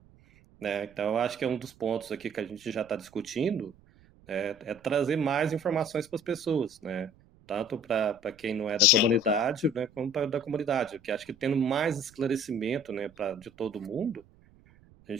né? Então, eu acho que é um dos pontos aqui que a gente já está discutindo, é trazer mais informações para as pessoas, né? Tanto para quem não é da Sim. comunidade, né, como para da comunidade, porque acho que tendo mais esclarecimento, né, de todo mundo, a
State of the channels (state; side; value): noise; right; rumble, 27 dB below the sound